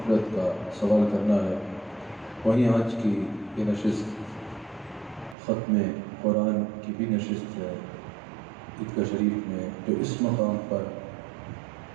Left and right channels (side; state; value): left; drops out; at 5.4 s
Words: کا سوال کرنا ہے. وہیں آج کی یہ نشست ختم قرآن کی بھی نشست ہے عیدگاہ شریف میں، جو اس مقام پر